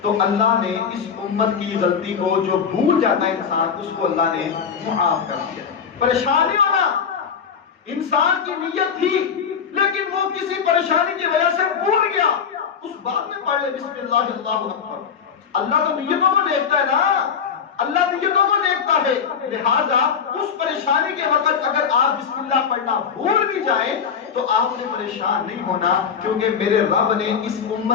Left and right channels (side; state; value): right; quieter; 6.8 dB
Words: تو اللہ نے اس امت کی غلطی کو، جو بھول جاتا ہے انسان، اس کو اللہ نے معاف کر دیا۔ پریشانی ہونا، انسان کی نیت تھی لیکن وہ کسی پریشانی کی وجہ سے بھول گیا، اس بات میں پڑھ لے بسم اللہ اللہ اکبر۔ اللہ تو نیتوں کو دیکھتا ہے نا، اللہ نیتوں کو دیکھتا ہے، لہذا اس پریشانی کے وقت اگر آپ بسم اللہ پڑھنا بھول بھی جائیں تو آپ نے پریشان نہیں ہونا، کیونکہ میرے رب نے اس